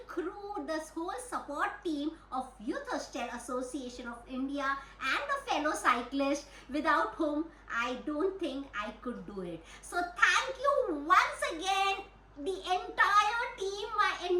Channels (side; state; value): both; identical; correlation 1.00